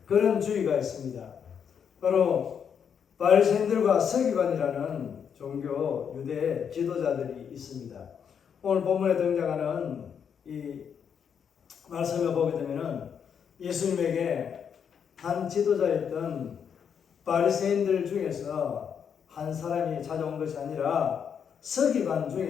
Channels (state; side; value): quieter; right; 7.5 dB